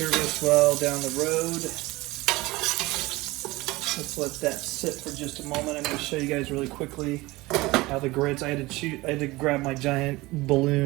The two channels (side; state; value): left; quieter; 20.9 dB